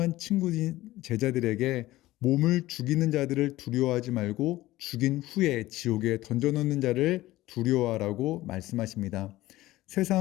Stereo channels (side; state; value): right; quieter; 16.9 dB